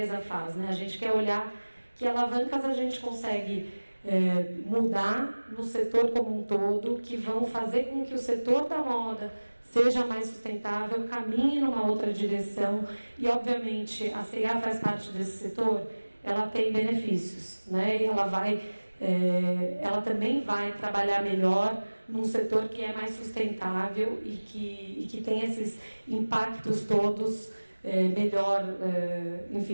faz, né? A gente quer olhar que alavancas a gente consegue mudar no setor como um todo, que vão fazer com que o setor da moda seja mais sustentável, caminhe numa outra direção. E, obviamente, a CIA faz parte desse setor. ela tem benefícios, né? E ela também vai trabalhar melhor num setor que é mais sustentável e que tem esses impactos todos melhor,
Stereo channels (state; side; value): inverted; both; correlation -1.00